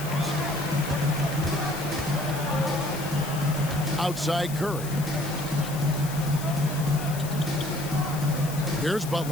Outside Curry. Here's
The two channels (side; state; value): left; noise; hiss, 12 dB below the sound